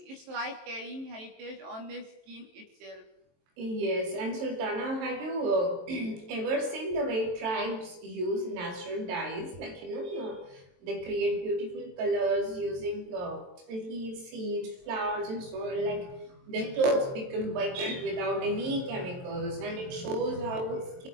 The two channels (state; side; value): late; left; 22 ms